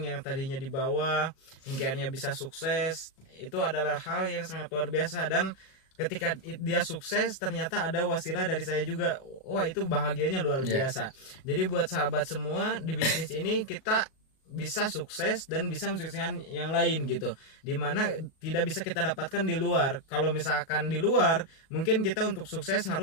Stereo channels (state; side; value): late; right; 37 ms